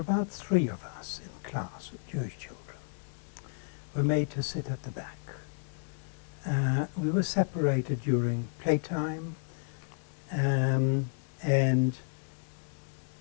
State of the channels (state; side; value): silent; right; digital silence